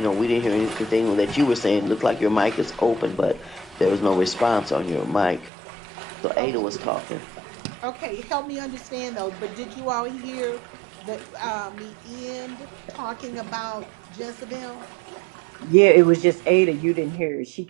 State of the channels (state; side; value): drops out; left; at 5.5 s